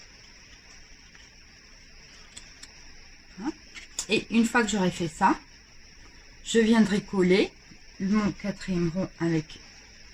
Et une fois que j'aurai fait ça, je viendrai coller mon quatrième rond avec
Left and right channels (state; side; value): identical; both; correlation 1.00